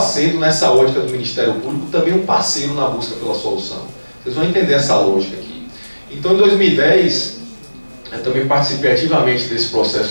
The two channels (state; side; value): inverted; both; correlation -1.00